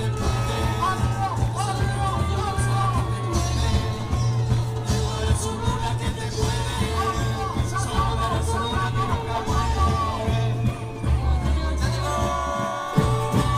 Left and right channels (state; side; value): identical; both; correlation 1.00